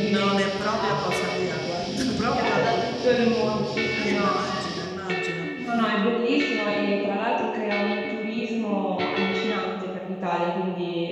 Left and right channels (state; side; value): identical; both; correlation 1.00